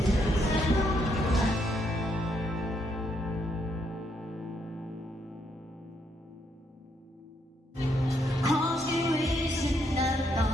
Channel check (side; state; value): both; normal; correlation 0.75